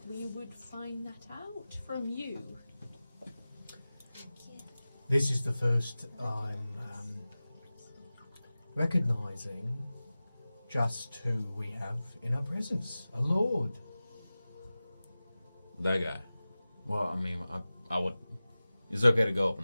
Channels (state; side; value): inverted; both; correlation -0.97